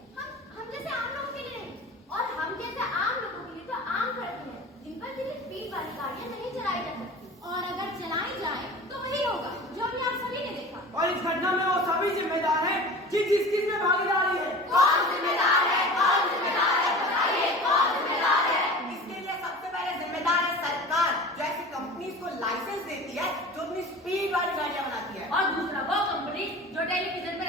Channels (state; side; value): normal; both; correlation 0.37